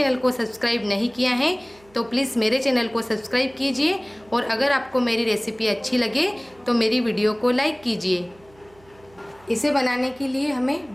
को सब्सक्राइब नहीं किया है तो प्लीज़ मेरे चैनल को सब्सक्राइब कीजिए, और अगर आपको मेरी रेसिपी अच्छी लगे तो मेरी वीडियो को लाइक कीजिए। इसे बनाने के लिए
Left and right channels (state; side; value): noise; right; hum, 29 dB below the sound